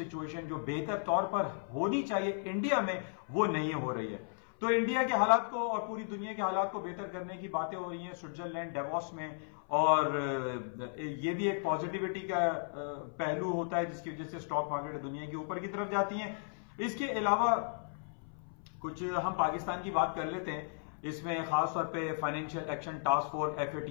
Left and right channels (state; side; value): silent; right; 54 dB below the other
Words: جو بہتر طور پر ہونی چاہیے انڈیا میں وہ نہیں ہو رہی ہے. تو انڈیا کے حالات کو اور پوری دنیا کے حالات کو بہتر کرنے کی باتیں ہو رہی ہیں سوئٹزرلینڈ ڈیووس میں, اور یہ بھی ایک پازیٹیوٹی کا پہلو ہوتا ہے جس کی وجہ سے اسٹاک مارکیٹ دنیا کے اوپر کی طرف جاتی ہیں. اس کے علاوہ کچھ ہم پاکستان کی بات کر لیتے ہیں. اس میں خاص طور پہ financial action task force